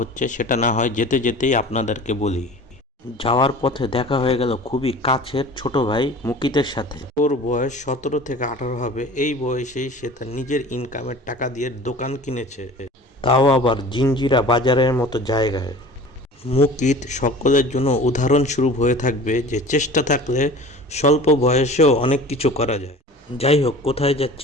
সেটা না হয় যেতে যেতেই আপনাদেরকে বলি। যাওয়ার পথে দেখা হয়ে গেল খুবই কাছের ছোট ভাই মুকিতের সাথে। ওর বয়স 17 থেকে 18 হবে। এই বয়সেই সে তার নিজের ইনকামের টাকা দিয়ে দোকান কিনেছে, তাও আবার জিঞ্জিরা বাজারের মতো জায়গায়। মুকিত সকলের জন্য উদাহরণস্বরূপ হয়ে থাকবে যে চেষ্টা থাকলে স্বল্প বয়সেও অনেক কিছু করা যায়। যাই হোক, কোথায়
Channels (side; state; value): both; normal; correlation 0.41